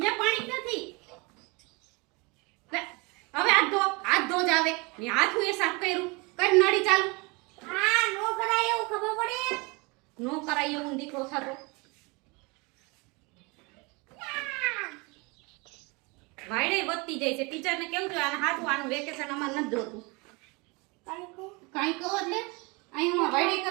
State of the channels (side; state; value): left; quieter; 27.8 dB